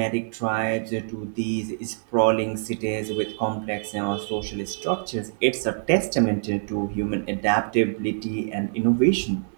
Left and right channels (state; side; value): silent; left; 62 dB below the other